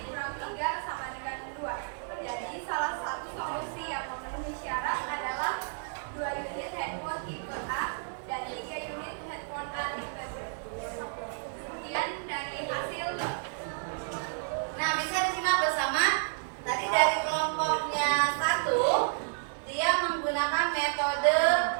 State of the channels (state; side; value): silent; left; digital silence